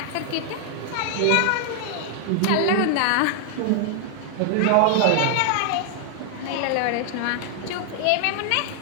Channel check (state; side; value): different; both; correlation -0.01